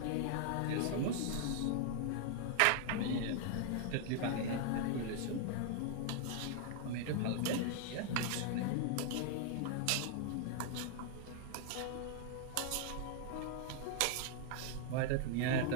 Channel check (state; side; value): different; both; correlation 0.00